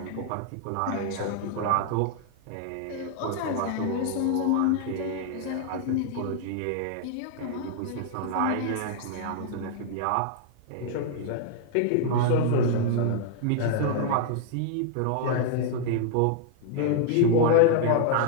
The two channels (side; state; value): both; different; correlation -0.01